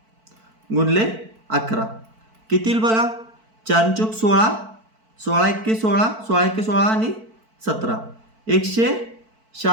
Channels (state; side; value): late; left; 4.5 ms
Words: गुणले 11 किती येईल बघा, 4 चौक 16, 16 एक्के 16, 16 एक्के 16 आणि 17